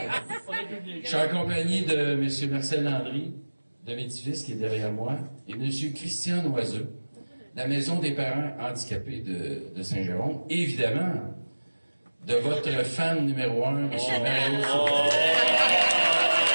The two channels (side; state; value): both; inverted; correlation -1.00